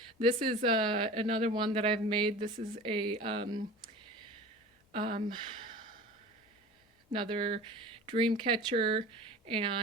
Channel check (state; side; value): normal; both; correlation 0.37